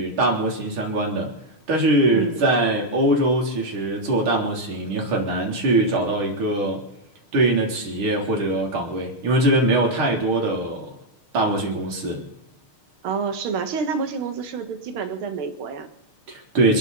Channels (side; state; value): left; late; 6.5 ms